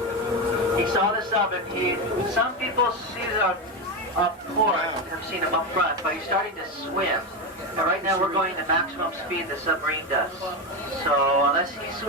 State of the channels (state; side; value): normal; both; correlation 0.14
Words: he saw this up, and some people see it up port, have seen him up front, but he's starting to swim. And right now we're going the maximum speed the submarine does. So unless he